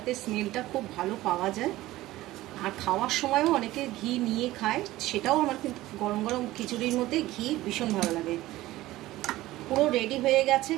স্মেলটা খুব ভালো পাওয়া যায়। আর খাওয়ার সময়ও অনেকে ঘি নিয়ে খায়, সেটাও আমার কিন্তু গরম গরম খিচুড়ির মধ্যে ঘি ভীষণ ভালো লাগে। পুরো রেডি হয়ে গেছে।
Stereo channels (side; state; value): left; quieter; 16.8 dB